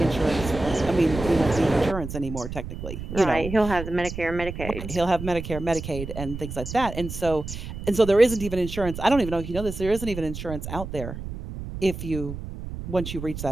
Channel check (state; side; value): noise; right; rumble, 8 dB below the sound